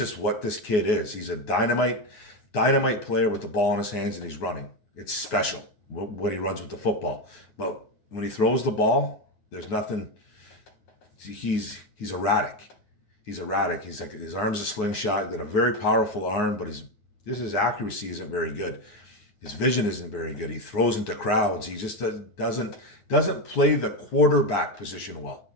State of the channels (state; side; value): late; right; 9.4 ms